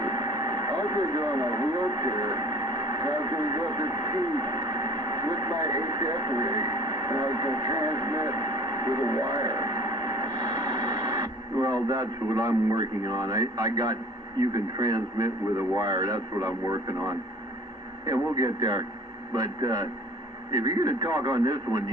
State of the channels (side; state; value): both; normal; correlation 0.47